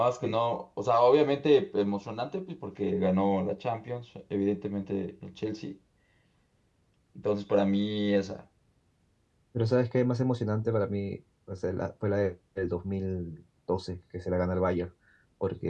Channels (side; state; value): both; identical; correlation 1.00